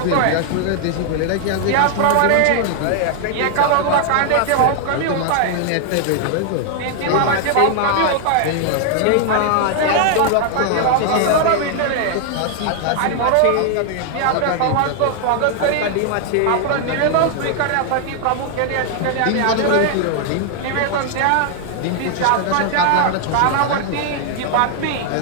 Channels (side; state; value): both; different; correlation 0.00